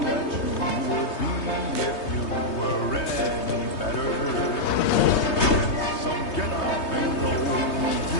that you would be if you were any better. Get some get up and go.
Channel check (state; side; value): late; right; 3.2 ms